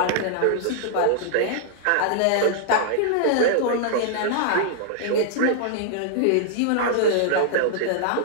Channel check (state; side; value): different; both; correlation -0.01